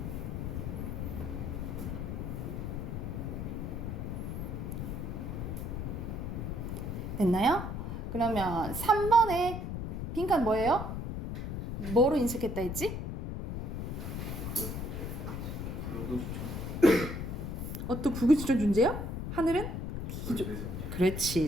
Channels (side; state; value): left; noise; rumble, 4 dB below the sound